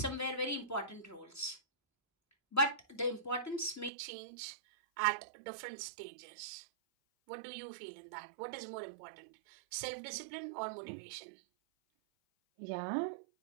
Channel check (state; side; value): drops out; left; at 3.9 s